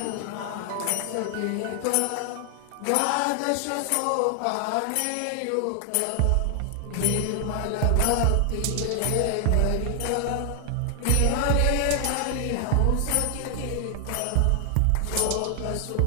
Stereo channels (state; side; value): different; both; correlation 0.00